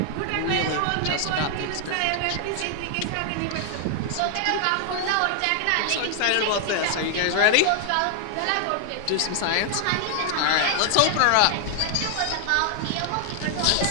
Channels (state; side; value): different; both; correlation 0.00